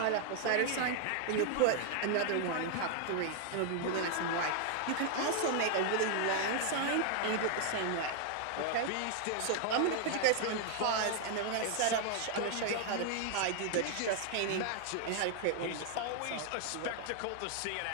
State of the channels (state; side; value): different; both; correlation 0.00